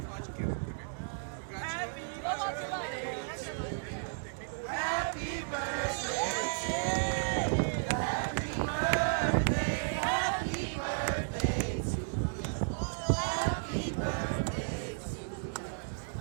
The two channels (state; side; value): silent; left; digital silence